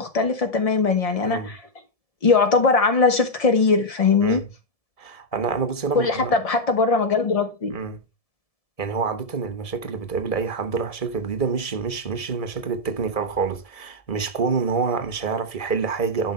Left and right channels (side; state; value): right; late; 1.7 ms